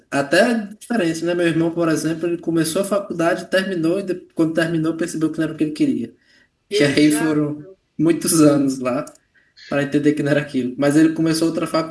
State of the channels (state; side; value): identical; both; correlation 1.00